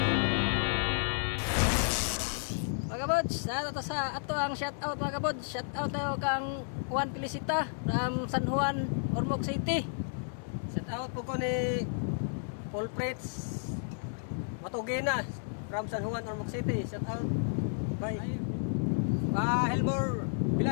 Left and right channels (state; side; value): silent; right; digital silence